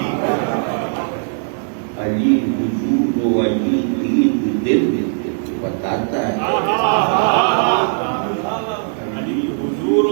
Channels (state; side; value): silent; left; 67 dB below the other